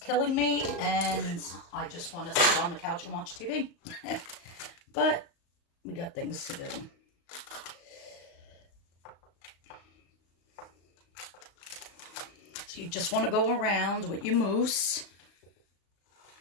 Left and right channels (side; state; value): right; late; 35 ms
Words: me and I just want to sit on the couch and watch TV. But we got things to do. So you just want to go around with your mousse.